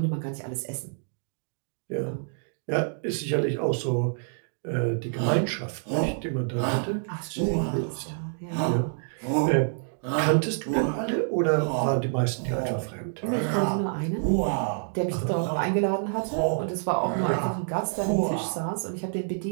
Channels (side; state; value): left; silent; digital silence